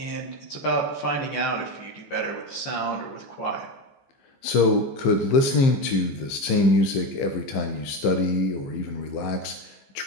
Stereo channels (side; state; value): right; late; 15 ms